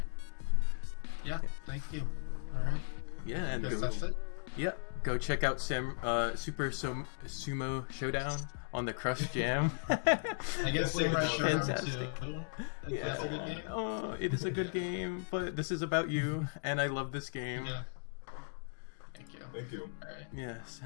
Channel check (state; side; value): silent; right; digital silence